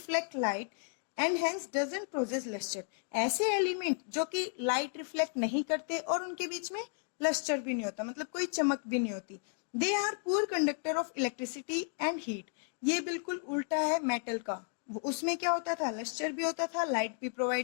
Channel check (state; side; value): silent; right; 55 dB below the other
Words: light and hence doesn't process lustre. ऐसे एलिमेंट जो कि लाइट रिफ्लेक्ट नहीं करते और उनके बीच में लस्टर भी नहीं होता, मतलब कोई चमक भी नहीं होती. They are poor conductor of electricity and heat. ये बिल्कुल उल्टा है मेटल का. उसमें क्या होता था, लस्टर भी होता था, लाइट भी